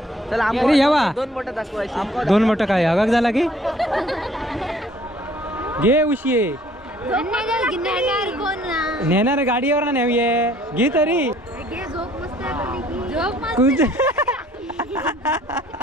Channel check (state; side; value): normal; both; correlation 0.58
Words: अरे यावा 2 मोठं काय हगाक झाला की घे उशी नेणार गाडीवर ना नेऊये घे तरी